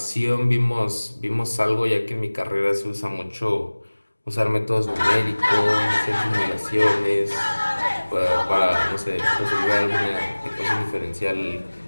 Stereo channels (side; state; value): both; inverted; correlation -1.00